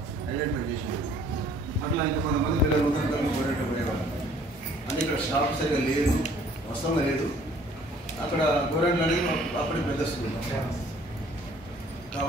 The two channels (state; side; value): normal; both; correlation 0.57